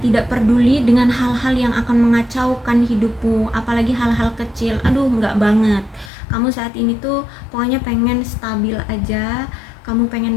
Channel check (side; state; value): right; drops out; at 6.1 s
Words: peduli dengan hal-hal yang akan mengacaukan hidupmu, apalagi hal-hal kecil. Aduh, enggak banget. Kamu saat ini tuh pokoknya pengen stabil aja, kamu